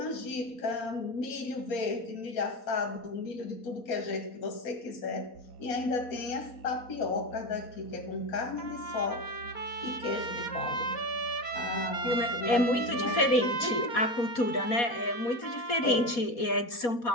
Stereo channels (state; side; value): late; right; 4.2 ms